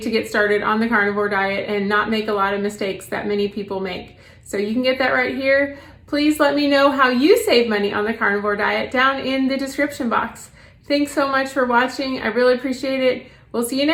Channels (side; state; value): both; identical; correlation 1.00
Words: get started on the carnivore diet and not make a lot of mistakes that many people make. So you can get that right here. Please let me know how you save money on the carnivore diet down in the description box. Thanks so much for watching. I really appreciate it. We'll see you